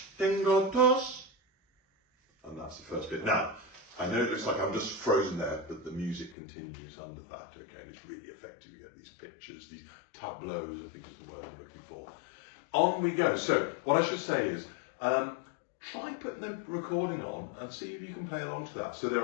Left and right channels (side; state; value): right; drops out; at 6.4 s